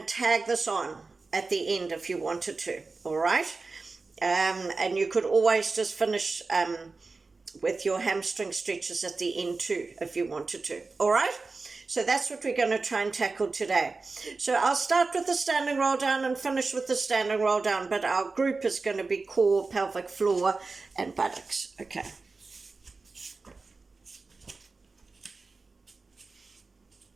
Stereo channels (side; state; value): left; quieter; 3.9 dB